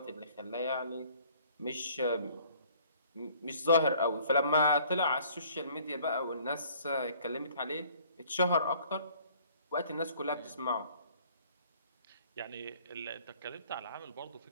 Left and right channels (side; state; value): both; inverted; correlation -0.56